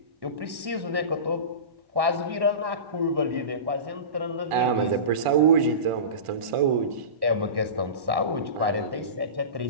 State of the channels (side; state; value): left; late; 1.1 ms